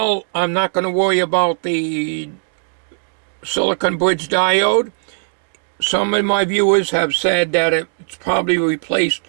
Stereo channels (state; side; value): silent; left; digital silence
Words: I'm not going to worry about the silicon bridge diode. Some of my viewers have said that it's probably replaced.